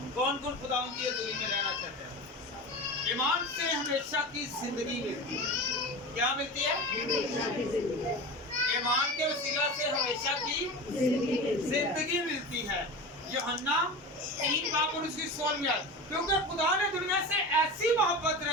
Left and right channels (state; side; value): normal; both; correlation 0.29